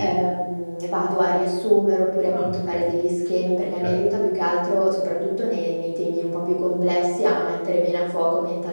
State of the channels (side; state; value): both; inverted; correlation -1.00